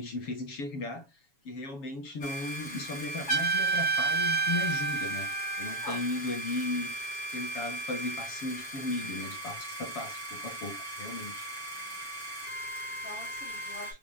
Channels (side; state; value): right; late; 7.2 ms